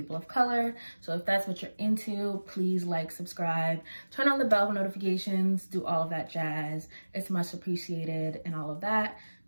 of color. So if that's what you're into, please like, subscribe, turn on the bell for notifications, do all of that jazz. It's much appreciated and all of that.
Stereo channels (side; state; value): both; inverted; correlation -1.00